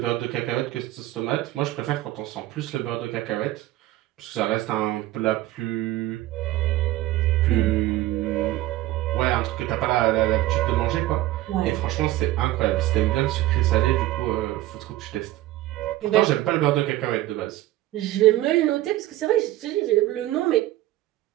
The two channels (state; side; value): quieter; left; 15.8 dB